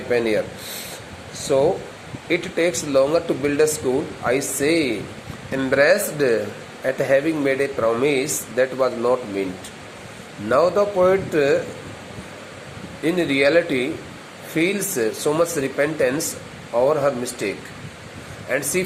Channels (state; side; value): identical; both; correlation 1.00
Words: pen here. So, it takes longer to build a school, I say, embarrassed at having made a promise that was not meant. Now the poet in reality feels so much repentance over her mistake, and she